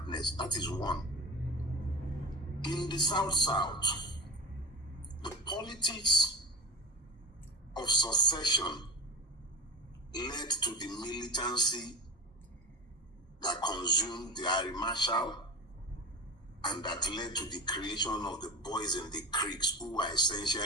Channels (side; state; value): both; normal; correlation 0.27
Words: That is one. In the South, the politics of secession led to the militancy that consumed the Air Marshal and that led to the creation of the boys in the creeks, who were